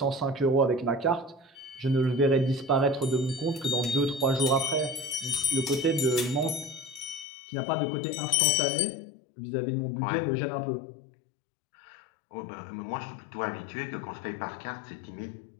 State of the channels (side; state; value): right; drops out; at 7.2 s